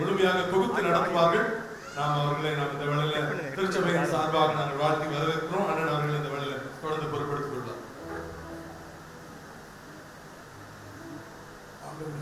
தொகுத்து நடத்துவார்கள். நாம் அவர்களை இந்த வேளையில திருச்சபையின் சார்பாக நாங்கள் வாழ்த்தி வரவேற்கிறோம். அண்ணன் அவர்கள் இந்த வேளையில தொடர்ந்து பொறுப்படுத்திக் கொள்வார்.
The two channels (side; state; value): both; identical; correlation 1.00